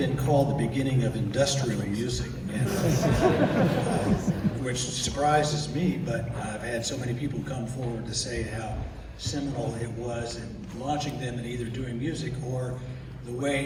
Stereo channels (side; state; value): both; identical; correlation 1.00